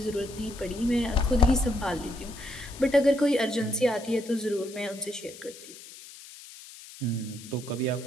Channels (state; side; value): noise; left; hiss, 17 dB below the sound